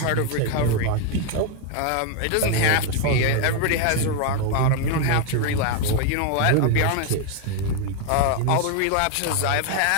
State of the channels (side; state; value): both; different; correlation 0.01